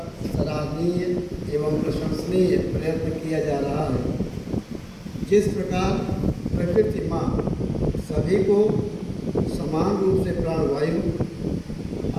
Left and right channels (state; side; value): identical; both; correlation 1.00